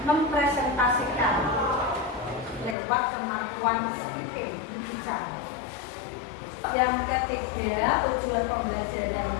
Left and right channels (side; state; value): right; drops out; at 2.8 s